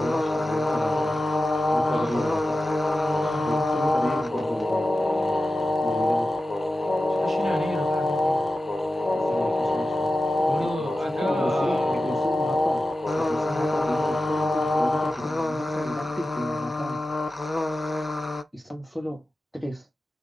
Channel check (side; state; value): both; normal; correlation 0.93